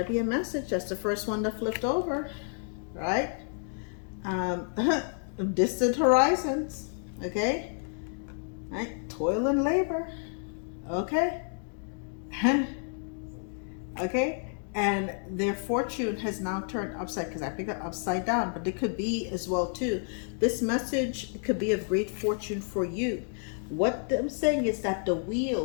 be a message. That's the first one that flipped over, right? Distant horizons. Okay, right, toil and labor. Okay. Okay, and their fortune has now turned upside, because I picked it upside down, but it could be as well too. This message could be of great fortune for you. What I'm saying is that the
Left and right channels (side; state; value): right; silent; 58 dB below the other